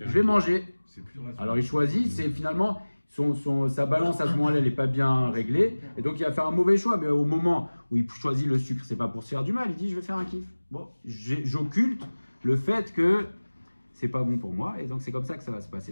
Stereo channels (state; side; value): inverted; both; correlation -1.00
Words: vais manger. Alors il choisit, c'est finalement sa balance à ce moment-là, elle n'est pas bien réglée, et donc il va faire un mauvais choix. Mais au moment où il choisit le sucre, c'est pas pour se faire du mal. Il dit, je vais faire un kiff. Bon, j'occulte le fait que c'est pas bon pour moi, et donc c'est comme ça que ça va se